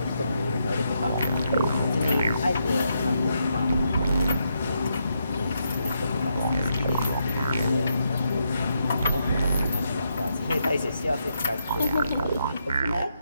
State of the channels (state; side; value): inverted; both; correlation -0.80